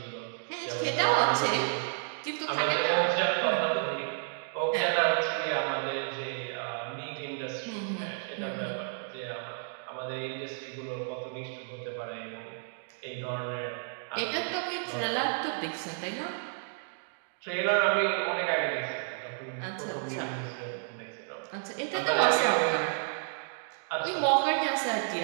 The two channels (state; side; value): silent; left; digital silence